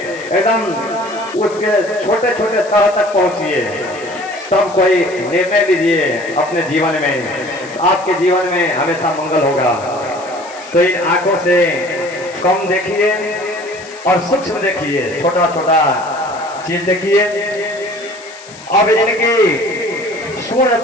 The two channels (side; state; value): left; noise; hiss, 20 dB below the sound